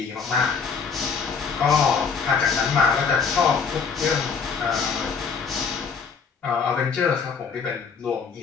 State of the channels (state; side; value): quieter; right; 5.7 dB